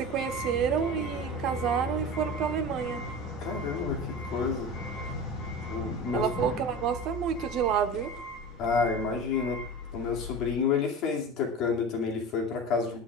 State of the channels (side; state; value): both; normal; correlation 0.31